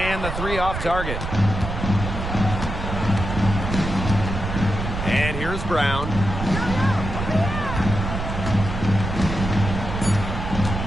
the three off target. And here's Brown.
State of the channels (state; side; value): noise; right; rumble, 5 dB below the sound